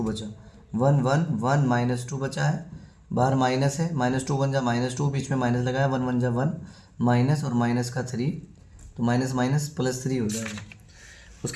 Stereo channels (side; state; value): both; identical; correlation 1.00